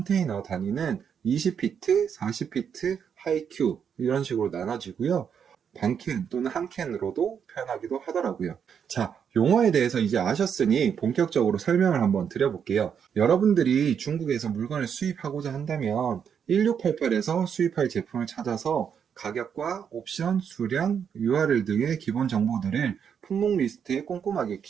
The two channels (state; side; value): quieter; left; 7.6 dB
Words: 단위는 20피트, 40피트, 하이큐 이런 식으로 나눠지고요. 반캔 또는 한 캔으로도 표현하기도 하더라고요. 자, 용어에 대해서 이제 아셨으니 본격적으로 설명을 한번 드려볼게요. 여러분들이 중국에서 물건을 수입하고자 한다면 1688에서 수입할 제품을 찾아서 가격과 옵션, 수량, URL 등의 기본 정보들을 품목 리스트에 꼼꼼하게